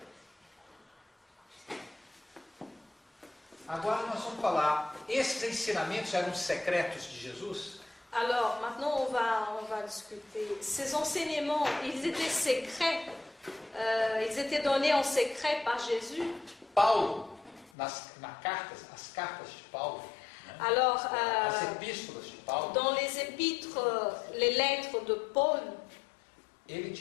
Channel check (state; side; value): drops out; right; at 17.7 s